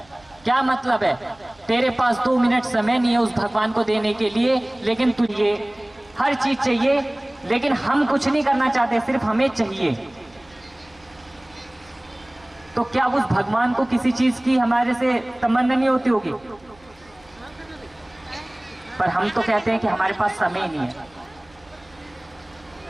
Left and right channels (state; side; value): noise; right; hum, 29 dB below the sound